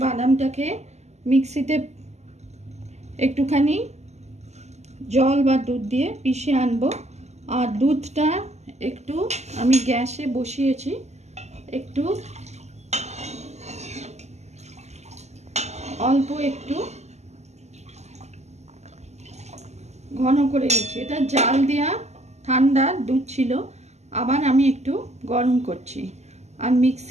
বাদামটাকে মিক্সিতে একটুখানি জল বা দুধ দিয়ে পিষে আনবো। আর দুধটা একটু আমি গ্যাসে বসিয়েছি, একটু অল্প একটু ঘন করে দিচ্ছি। এটা জাল দেওয়া ঠান্ডা দুধ ছিল, আবার আমি একটু গরম করছি। আর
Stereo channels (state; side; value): late; left; 0.33 ms